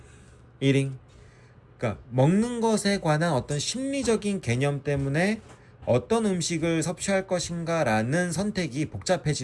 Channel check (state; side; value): identical; both; correlation 1.00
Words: eating. 그러니까 먹는 것에 관한 어떤 심리적인 개념 때문에 어떤 음식을 섭취할 것인가라는 선택이